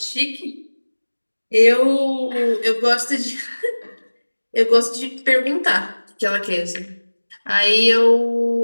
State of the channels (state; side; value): inverted; both; correlation -1.00